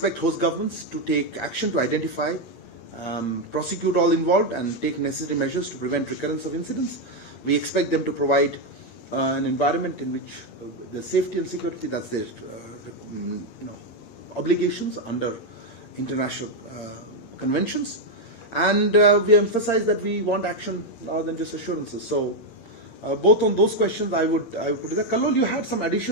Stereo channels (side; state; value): right; late; 8.7 ms